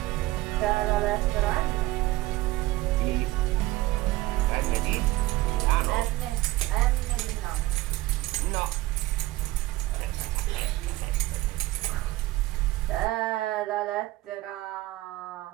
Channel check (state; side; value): quieter; left; 17.8 dB